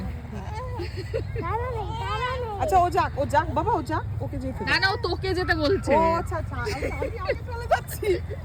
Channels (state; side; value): identical; both; correlation 1.00